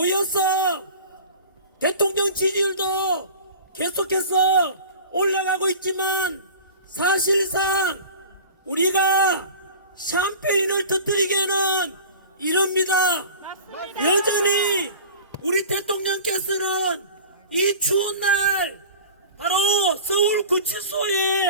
대통령 지지율도 계속해서 올라가고 있지만 사실상 우리가 샴페인을 터뜨리기에는 이럽니다. 여전히 우리 대통령께서는 이 추운 날 바로 서울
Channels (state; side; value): inverted; both; correlation -0.39